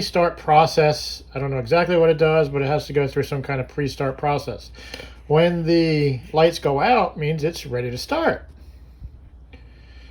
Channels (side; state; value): both; identical; correlation 1.00